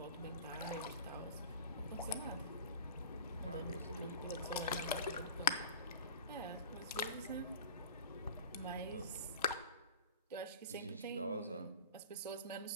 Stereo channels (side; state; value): both; inverted; correlation -0.39